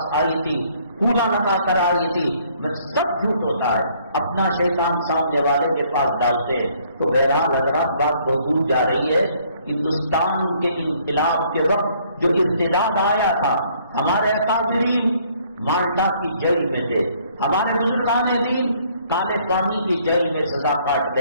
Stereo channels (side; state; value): both; inverted; correlation -0.63